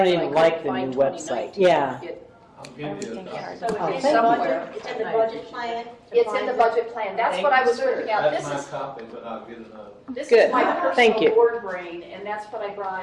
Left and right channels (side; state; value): both; identical; correlation 1.00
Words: so even couldn't like the find new website. 2019. Yeah. I'll give you a copy. So Oh, it's thank in you. the budget, it's in the budget plan? to It's in the find- budget plan. That's what I was working out. That's This my is, copy, but I'll get another. this Good. is my Thank personal you. board brain, and that's what I